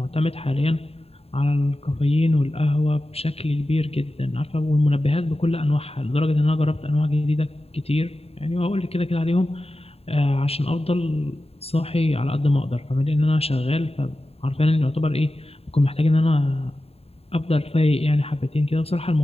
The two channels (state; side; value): late; right; 0.29 ms